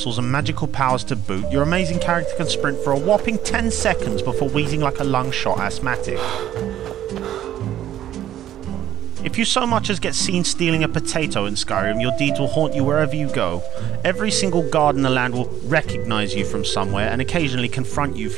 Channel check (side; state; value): left; quieter; 12.1 dB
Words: and magical powers to boot, your amazing character can sprint for a whopping 10 seconds before wheezing like a lung-shot asthmatic. If you so much as get seen stealing a potato in Skyrim, your deeds will haunt you wherever you go. Every single guard in the land will recognise you from somewhere and occasionally confront you